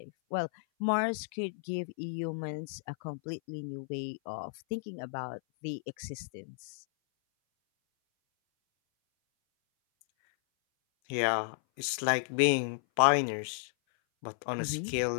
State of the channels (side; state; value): right; silent; 56 dB below the other